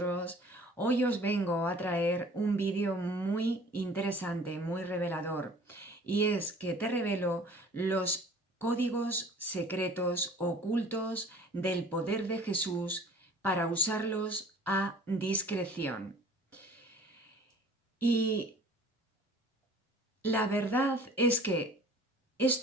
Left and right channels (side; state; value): both; normal; correlation 0.48